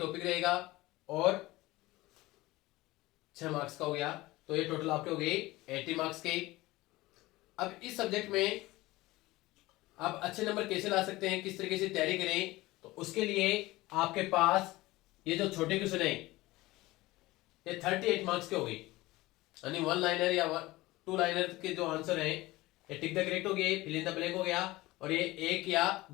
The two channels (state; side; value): quieter; right; 19.4 dB